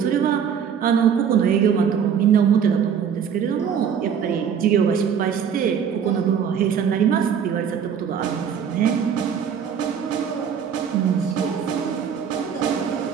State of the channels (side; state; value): left; quieter; 7.7 dB